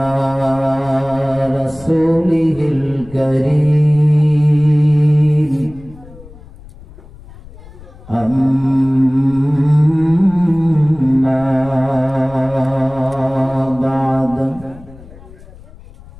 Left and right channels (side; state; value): left; noise; rumble, 20 dB below the sound